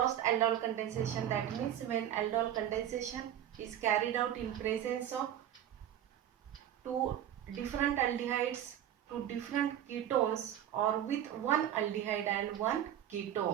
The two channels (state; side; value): quieter; left; 10.9 dB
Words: aldol condensation, that means when aldol condensation is carried out in presence of two different aldehydes, two different ketones, or with one aldehyde and one